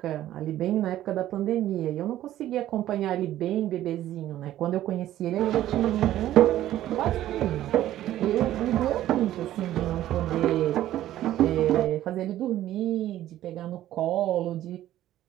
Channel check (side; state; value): left; quieter; 13.3 dB